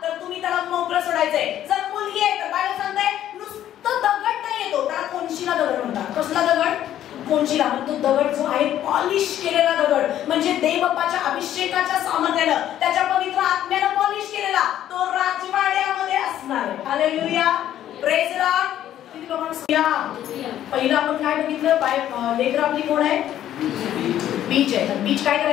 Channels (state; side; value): quieter; right; 11.7 dB